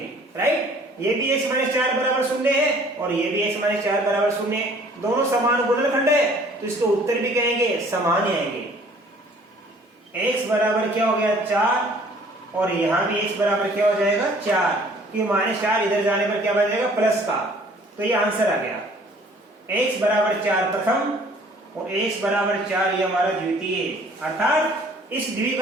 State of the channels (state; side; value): normal; both; correlation 0.55